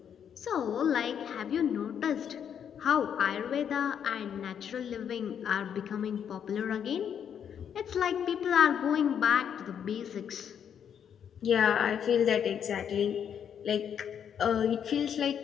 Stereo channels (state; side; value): quieter; right; 8.3 dB